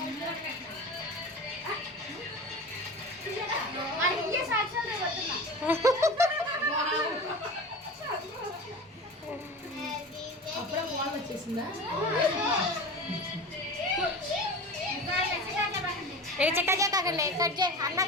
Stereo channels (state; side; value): normal; both; correlation 0.32